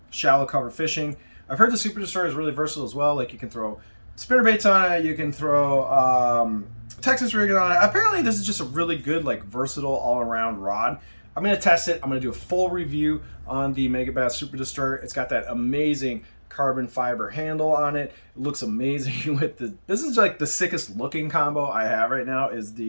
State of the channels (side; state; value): both; inverted; correlation -1.00